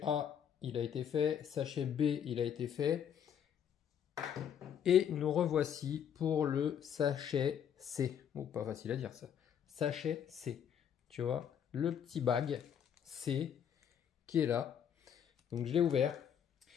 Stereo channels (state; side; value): quieter; right; 8.7 dB